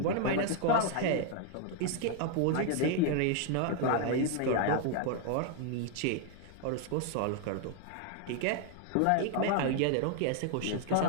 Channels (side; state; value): both; different; correlation 0.00